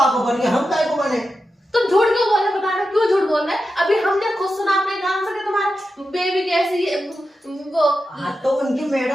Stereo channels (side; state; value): both; normal; correlation 0.90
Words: बन गया, हम काय को बने? तुम झूठ क्यों बोल रहे? बता रहे क्यों झूठ बोल रहे? अभी हमने खुद सुना अपने कान से कि तुम्हारी बेबी कैसी है वो। हाँ तो उनकी